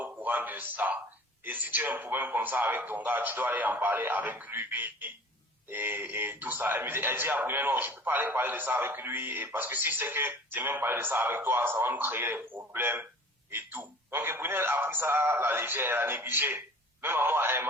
courant de ça. Et si tu as un problème comme ça avec ton gars, tu dois aller en parler avec lui et tout ça. Elle dit à Brunel, non, je ne peux pas aller parler de ça avec lui parce que si c'est que j'ai même parlé de ça avec toi, ça va nous créer des problèmes et tout. Donc Brunel a pris ça à la légère, elle a négligé. Même à moi, elle ne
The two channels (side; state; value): both; normal; correlation 0.44